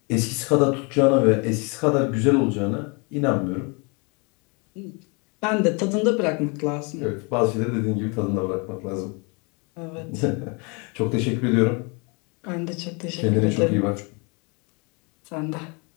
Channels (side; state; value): right; quieter; 31.9 dB